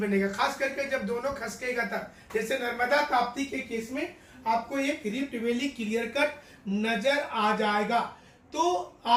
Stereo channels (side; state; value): both; identical; correlation 1.00